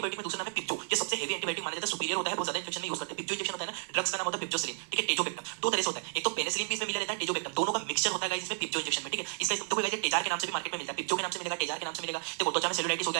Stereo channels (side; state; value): left; silent; 56 dB below the other